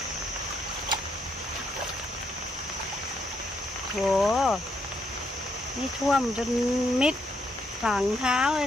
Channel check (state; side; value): normal; both; correlation 0.75